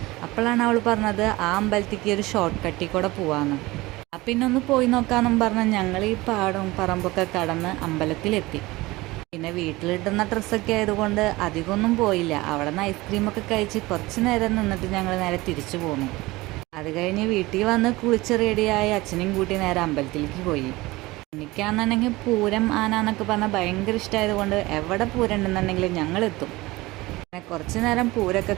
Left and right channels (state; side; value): quieter; left; 20.6 dB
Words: അപ്പോഴാണ് അവൾ പറഞ്ഞത് ആ അമ്പലത്തേക്ക് ഒരു ഷോർട്ട് കട്ടിൽ കൂടെ പോവാമെന്ന്. അപ്പം പിന്നെ ഒന്ന് പോയി നോക്കാമെന്നും പറഞ്ഞ് ഞങ്ങൾ ഈ പാടവും പറമ്പൊക്കെ കടന്ന് അമ്പലത്തിലെത്തി. പിന്നെ വീട്ടിലിട്ടുന്ന ഡ്രസ്സൊക്കെ ആയതുകൊണ്ട് അധികമൊന്നും പോയില്ല. അവിടെ നിന്ന് ഐസ്ക്രീമൊക്കെ കഴിച്ച് കുറച്ച് നേരം നിന്നിട്ട് ഞങ്ങൾ നേരെ തിരിച്ചു പോന്നു. അത് കഴിഞ്ഞ് വീട്ടിൽ വന്ന് കുളിച്ച് റെഡിയായി അച്ഛനെയും കൂട്ടി നേരെ അമ്പലത്തിലേക്ക് പോയി. എനിക്കാണെന്നുണ്ടെങ്കിൽ പൂരം ആന എന്നൊക്കെ പറഞ്ഞാൽ ഭയങ്കര ഇഷ്ടമായതുകൊണ്ട് എവിടെ പൂരം ഉണ്ടെന്നുണ്ടെങ്കിലും ഞങ്ങളെത്തും. പിന്നെ കുറച്ച് നേരം പൂരമൊക്കെ